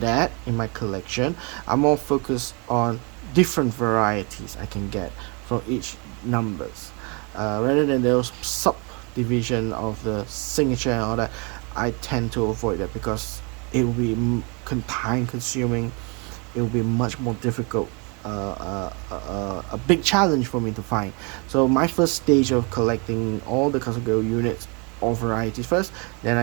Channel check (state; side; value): quieter; left; 32.4 dB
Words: that in my collection. I'm more focused on different varieties I can get from each numbers, rather than those subdivision of the signature and all that. I tend to avoid that because it will be time consuming. It will be much more difficult, a big challenge for me to find. So my first stage of collecting all the custom gold units or varieties first, then